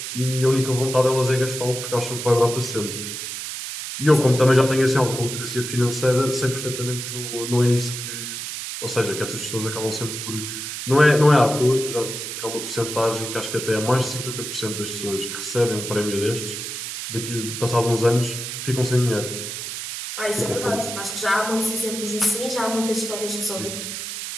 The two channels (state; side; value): noise; right; hiss, 6 dB below the sound